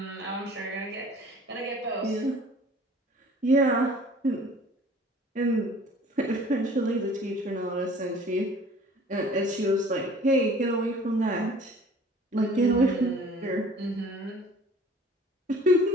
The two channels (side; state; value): both; normal; correlation 0.50